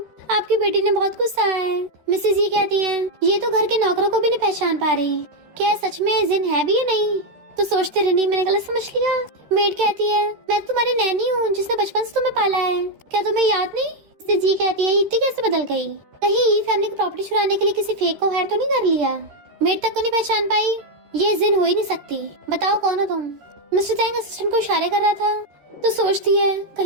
आपकी बेटी ने बहुत गुस्सा है। मिसेज ये कहती है ये तो घर के नौकरों को भी नहीं पहचान पा रही, क्या सच में जिन है भी या नहीं। तो सोचते रहनी मैंने गलत समझ लिया। मेड कहती है मैं तुम्हारी नैनी हूँ जिसने बचपन से तुम्हें पाला है, क्या तुम्हें याद नहीं। जी कहती है इतनी कैसे बदल गई, कहीं ये फैमिली की प्रॉपर्टी छुड़ाने के लिए किसी फेक को हायर तो नहीं कर लिया। मेड तक को नहीं पहचान पाई, ये जिन हो ही नहीं सकती, बताओ कौन हो तुम। मिस्टर तैंग असिस्टेंट को इशारे कर रहा था तो सोचती है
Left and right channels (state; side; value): late; left; 13 ms